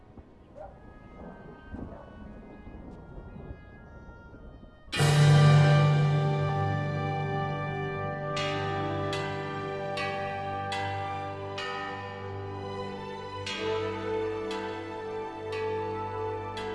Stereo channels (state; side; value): identical; both; correlation 1.00